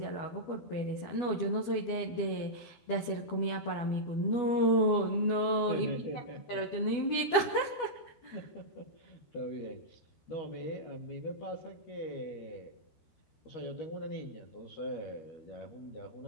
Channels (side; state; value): right; late; 12 ms